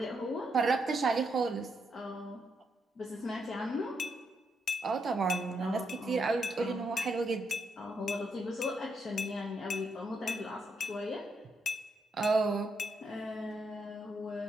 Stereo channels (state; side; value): normal; both; correlation 0.79